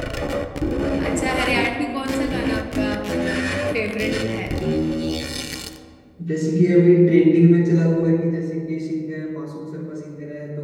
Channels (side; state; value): both; identical; correlation 1.00